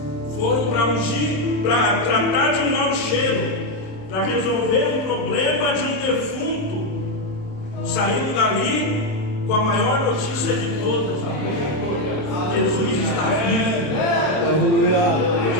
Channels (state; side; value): late; right; 27 ms